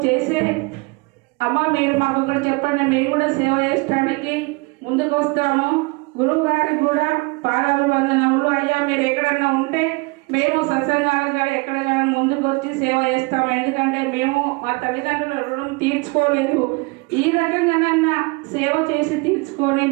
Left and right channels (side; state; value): left; quieter; 26.9 dB